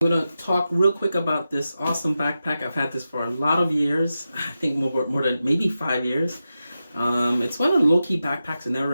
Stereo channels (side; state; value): both; inverted; correlation -0.91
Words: I'm gonna talk real quick about this awesome backpack. I've had this for a lot of years. I think more than maybe 5 years. It's one of the low-key backpacks I never